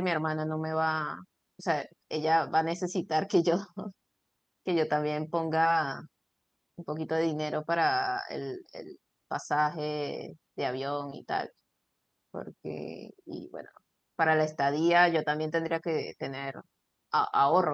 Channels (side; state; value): both; identical; correlation 1.00